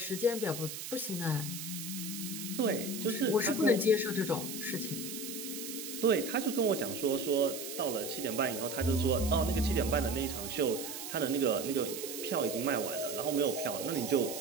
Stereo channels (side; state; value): right; noise; hiss, 8 dB below the sound